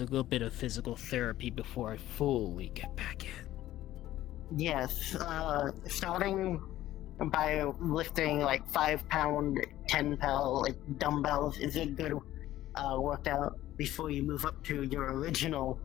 bit of physical therapy before I fully get back in. Yes, starting by lifting like 5-pound, 10-pound like dumbbells is a good workout before you move up to your original,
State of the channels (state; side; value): quieter; right; 14.2 dB